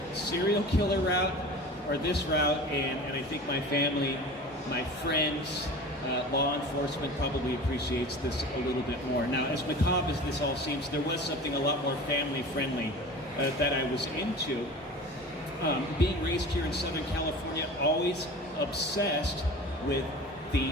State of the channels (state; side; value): normal; both; correlation 0.36